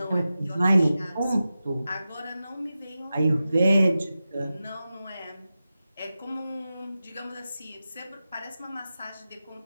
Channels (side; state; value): both; inverted; correlation -0.93